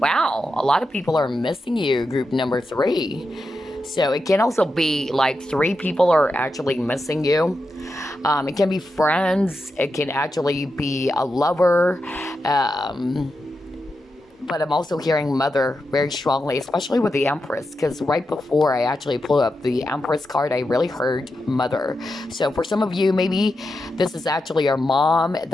a lot of people are missing you, group number 3. So it can also be like 3 people are actually missing you. It can be friends, it can actually be a lover, but I'm also hearing mother very strongly, especially with the Empress, because right before I actually pulled up the Empress card, I really heard mother. So for some of you, maybe this is actually your mom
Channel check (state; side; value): normal; both; correlation 0.88